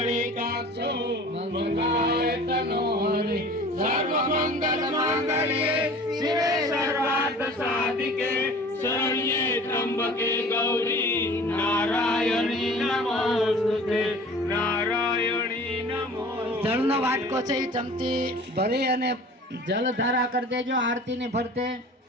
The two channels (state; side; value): normal; both; correlation 0.44